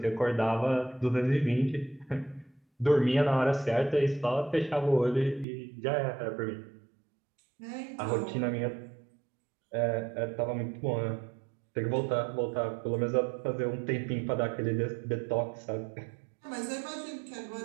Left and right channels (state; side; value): drops out; left; at 5.5 s